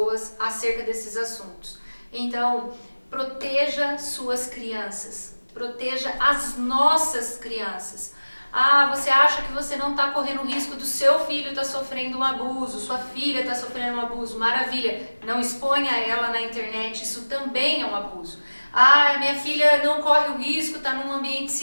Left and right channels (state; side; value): inverted; both; correlation -1.00